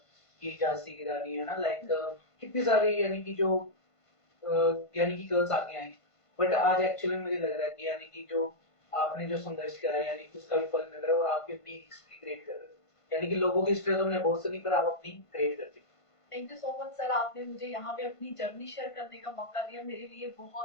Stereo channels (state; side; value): late; right; 1.5 ms